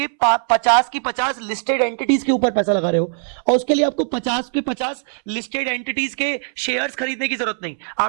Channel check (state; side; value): silent; left; 66 dB below the other